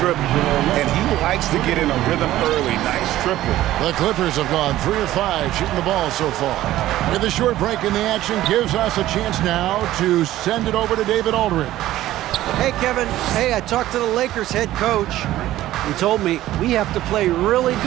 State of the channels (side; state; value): left; quieter; 14.6 dB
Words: And he likes to get in a rhythm early. Nice triple. The Clippers have gone 3 of 5 shooting the ball so far. With a short break in the action gives us a chance now to send it over to David Aldridge. Hey, Kevin. Hey, I talked to the Lakers head coach. He told me we have to play really